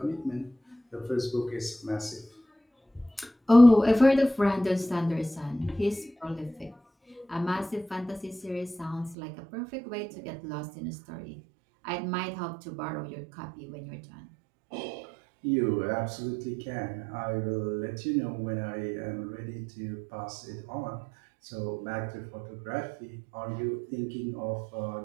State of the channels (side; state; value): left; drops out; at 9.2 s